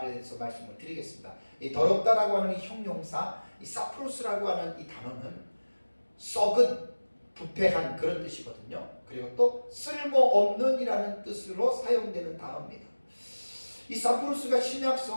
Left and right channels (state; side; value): inverted; both; correlation -1.00